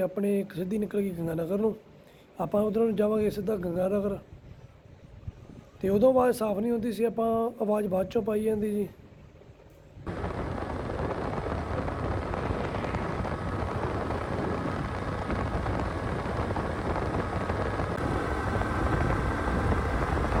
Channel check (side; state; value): both; identical; correlation 1.00